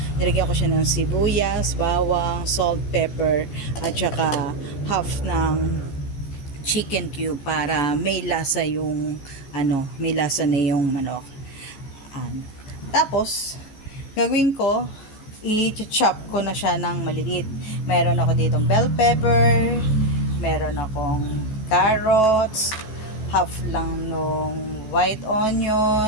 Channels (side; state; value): right; late; 14 ms